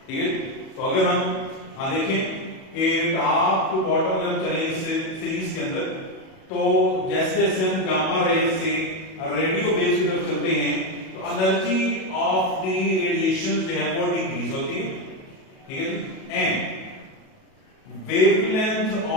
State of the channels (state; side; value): late; right; 37 ms